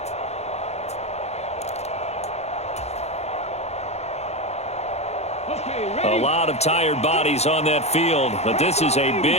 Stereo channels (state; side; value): late; right; 0.31 ms